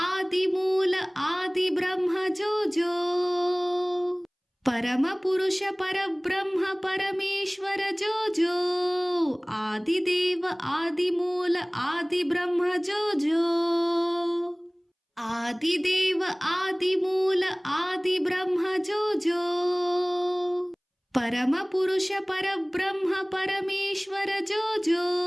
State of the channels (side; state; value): both; identical; correlation 1.00